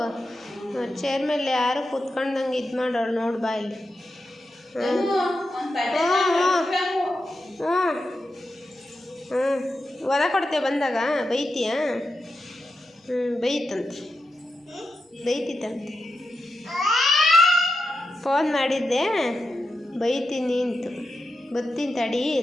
ಚೇರ್ ಮೇಲೆ ಯಾರು ಕೂತ್ಕೊಂಡಂಗೆ ಇದು ಮಾಡೋಳು ನೋಡಿ ಬಾ ಇಲ್ಲಿ. ಒದ ಕೊಡ್ತೇವೆ ಬಂದಾಗ ಬೈತೀಯ? ಬೈತಿತ್ತಂತೆ. ಫೋನ್ ಮಾಡಿದ್ದೆ, ಬೈತೀನಿ ಅಂತು, ಬರ್ತೀನಿ ತಡಿ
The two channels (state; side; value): normal; both; correlation 0.88